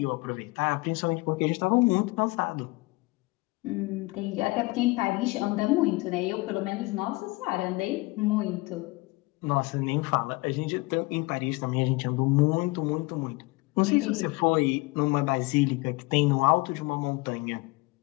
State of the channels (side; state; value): right; quieter; 23.7 dB